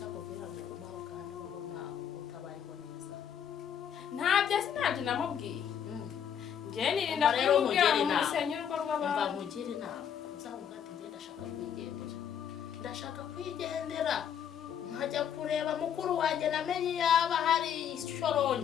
akubwira ngo umaho kandi ubona utabayeho neza ntabyo sinabyo namubwiye njye nirinda kumubwira ngo musenye urugo rw'abantu mba nkugire inama uzavuga ati njye ndashaka kwigendera nkajya kureba mukuru wanjye namenye yaba hari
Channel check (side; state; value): right; quieter; 8.6 dB